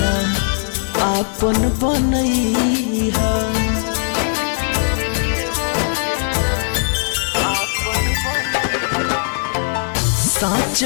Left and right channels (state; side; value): silent; right; digital silence